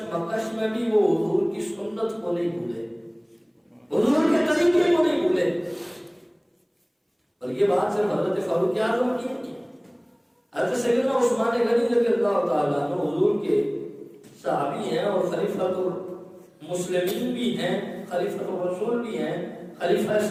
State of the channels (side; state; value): both; identical; correlation 1.00